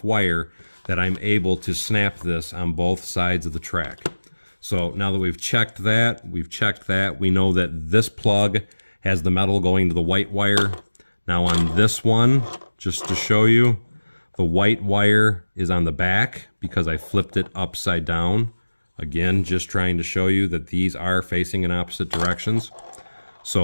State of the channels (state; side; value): inverted; both; correlation -1.00